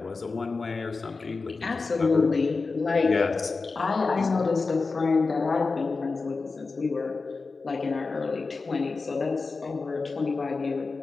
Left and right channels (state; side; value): quieter; right; 4.1 dB